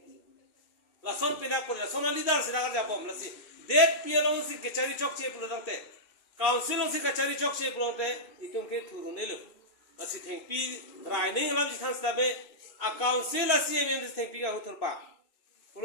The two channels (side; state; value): right; late; 2.5 ms